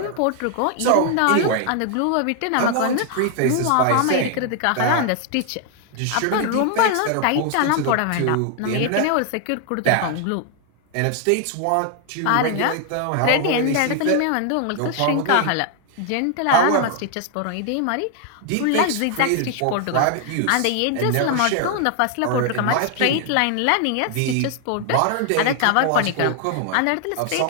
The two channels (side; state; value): both; different; correlation 0.00